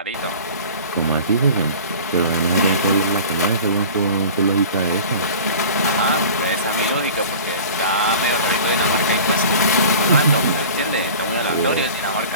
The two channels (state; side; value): inverted; both; correlation -0.40